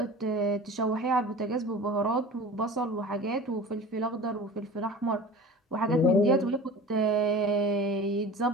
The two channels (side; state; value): both; normal; correlation 0.37